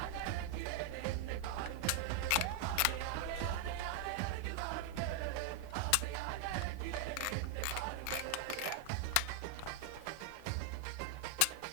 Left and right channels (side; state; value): both; different; correlation 0.00